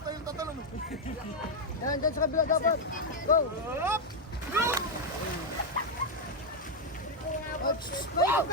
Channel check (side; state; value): both; normal; correlation 0.01